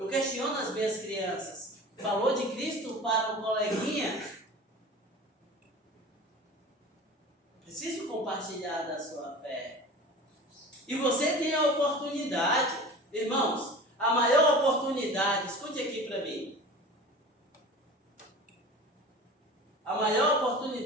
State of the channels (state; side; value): normal; both; correlation 0.37